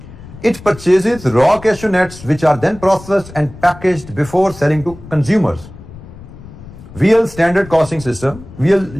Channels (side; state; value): left; noise; rumble, 17 dB below the sound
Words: It purchases raw cashew nuts which are then processed and packaged before selling to consumers. VL uses standard costing system.